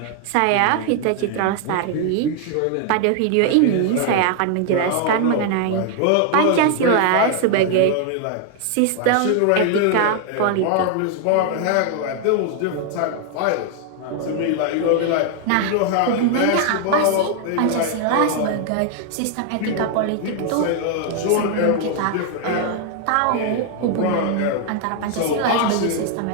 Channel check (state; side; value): different; both; correlation 0.00